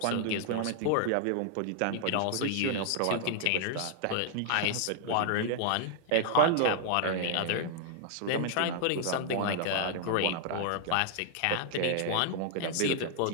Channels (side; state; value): both; different; correlation 0.00